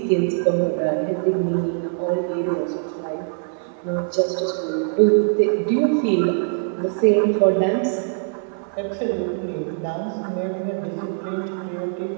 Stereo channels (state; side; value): silent; left; 56 dB below the other